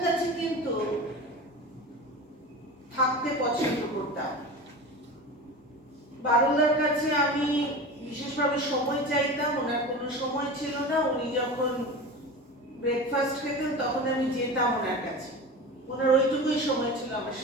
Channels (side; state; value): both; normal; correlation 0.30